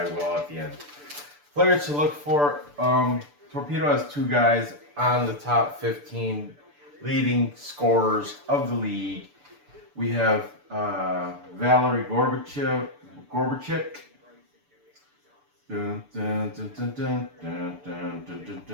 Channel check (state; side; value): late; left; 6.8 ms